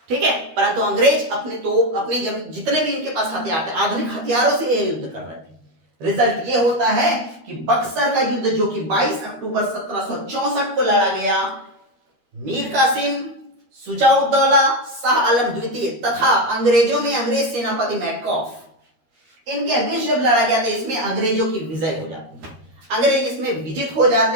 ठीक है, परंतु अंग्रेज अपने तोप, अपने जब जितने भी इनके पास हथियार थे, आधुनिक हथियारों से ये युद्ध कर रहे थे। रिजल्ट ये होता है कि बक्सर का युद्ध, जो कि 22 अक्टूबर 1764 को लड़ा गया, मीर कासिम, शुजाउद्दौला, शाह आलम द्वितीय तथा अंग्रेजों में अंग्रेज सेनापति मैटकॉफ, इनके बीच जब लड़ा गया था, इसमें अंग्रेजों की विजय हो जाती है, अंग्रेज इसमें विजित हो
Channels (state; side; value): late; left; 13 ms